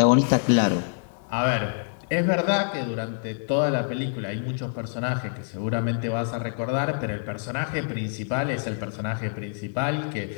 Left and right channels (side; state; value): right; silent; digital silence